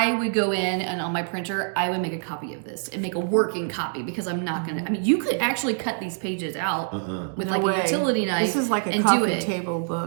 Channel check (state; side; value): silent; left; digital silence